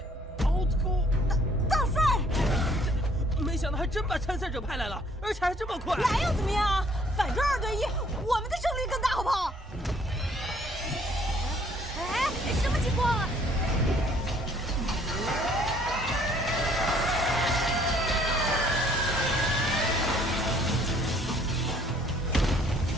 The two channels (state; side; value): normal; both; correlation 0.61